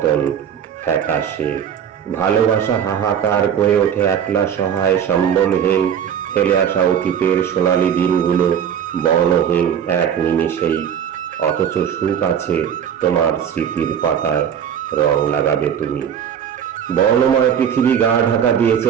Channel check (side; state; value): left; quieter; 8.5 dB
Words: ফ্যাকাশে। ভালোবাসা হাহাকার করে ওঠে একলা সহায় সম্বলহীন, ফেলে আসা অতীতের সোনালি দিনগুলো বর্ণহীন এক নিমিষেই। অথচ সুখ আছে তোমার স্মৃতির পাতায়, রং লাগাবে তুমি। বর্ণময় পৃথিবী গা ঢাকা দিয়েছে